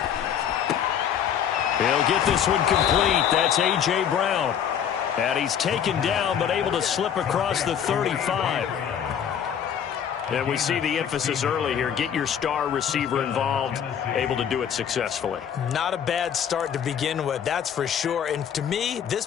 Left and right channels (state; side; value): quieter; right; 8.7 dB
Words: He'll get this one complete. That's A.J. Brown. And he's taken down but able to slip across the 35. And we see the emphasis early here. Get your star receiver involved, able to do it successfully. Not a bad start to begin with, that's for sure. And to me, this